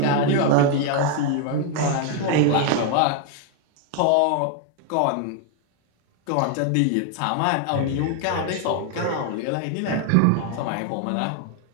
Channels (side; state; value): both; different; correlation 0.01